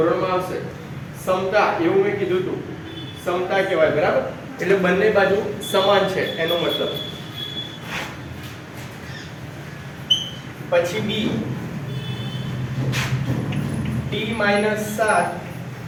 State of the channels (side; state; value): both; identical; correlation 1.00